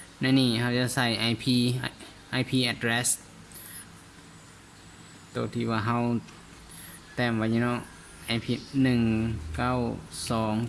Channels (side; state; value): both; identical; correlation 1.00